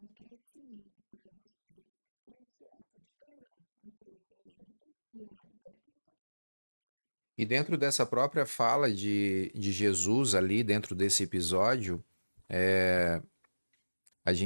crescimento para você ter esse ato de perdão, um crescimento e uma libertação. Tá bom? E dentro dessa própria fala de Jesus ali, dentro desse episódio, a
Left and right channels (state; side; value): inverted; both; correlation -1.00